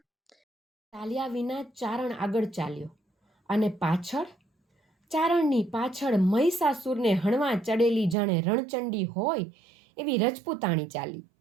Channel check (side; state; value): left; drops out; at 8.2 s